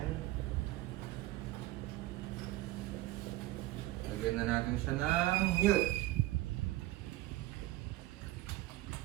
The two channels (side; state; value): left; quieter; 17.1 dB